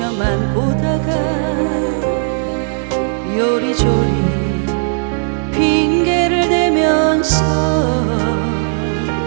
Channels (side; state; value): left; silent; digital silence